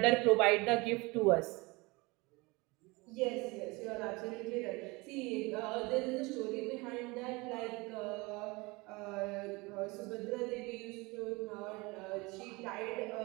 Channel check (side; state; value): left; quieter; 24.7 dB